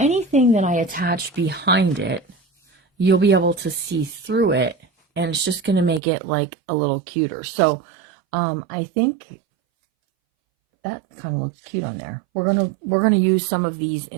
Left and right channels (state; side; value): drops out; left; at 6.0 s